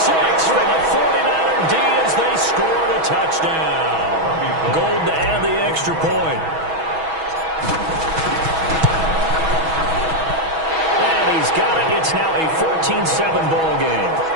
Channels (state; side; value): late; left; 6.2 ms